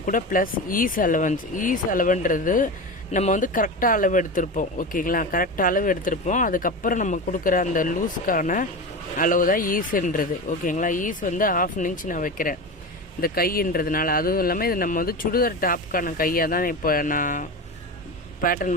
கூட ப்ளஸ் ஈஸ் அலவன்றது நம்ம வந்து கரெக்டாக அளவு எடுத்திருப்போம், ஓகேங்களா. கரெக்டாக அளவு எடுத்திருப்போம். அதுக்கப்புறம் நம்ம கொடுக்குற அந்த லூஸ்க்கான அளவு தான் ஈஸுன்றது, ஓகேங்களா. ஈஸ் வந்து 1/2 இன்ச் நான் வைக்கிறேன் இந்த கைன்றதுனால. அதுவும் இல்லாமல் இது நம்ம வந்து சுடிதார் டாப்புக்கான கையாக தான் இப்போ நான்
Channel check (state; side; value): normal; both; correlation 0.24